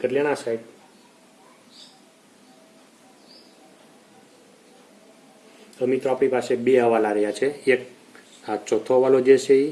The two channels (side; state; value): both; identical; correlation 1.00